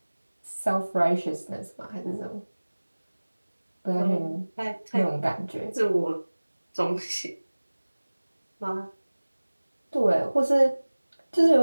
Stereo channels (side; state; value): both; inverted; correlation -1.00